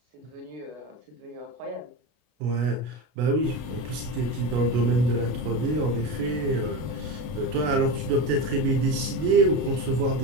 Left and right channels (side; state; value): left; late; 33 ms